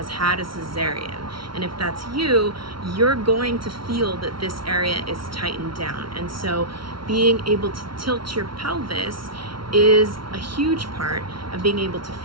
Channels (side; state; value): left; late; 0.74 ms